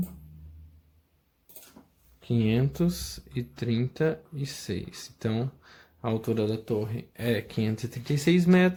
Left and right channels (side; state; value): both; identical; correlation 1.00